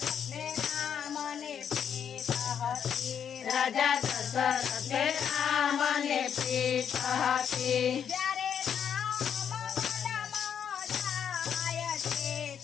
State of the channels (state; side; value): quieter; right; 8.2 dB